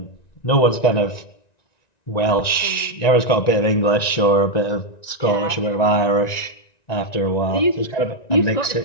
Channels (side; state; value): right; late; 1.9 ms